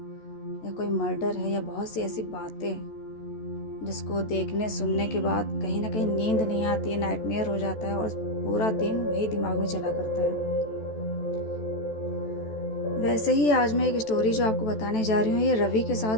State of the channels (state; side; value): late; right; 14 ms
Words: कोई मर्डर है या बहुत सी ऐसी बातें जिसको देखने सुनने के बाद कहीं ना कहीं नींद नहीं आती है, नाइटमेयर हो जाता है और पूरा दिन वही दिमाग में चला करता है। वैसे ही आज मैं एक स्टोरी जो आपको बताने जा रही हूँ ये रवि के